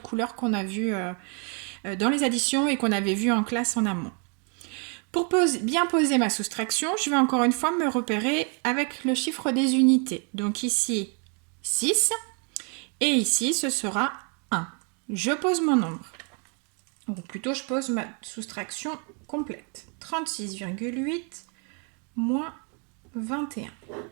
couleur qu'on a vu dans les additions et qu'on avait vu en classe en amont. Pour bien poser ma soustraction, je vais encore une fois me repérer avec le chiffre des unités. Donc ici, 6 et ici, ce sera 1. Je pose mon nombre. Ou plutôt, je pose ma soustraction complète. 36,8 moins 21.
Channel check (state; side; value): quieter; left; 38.4 dB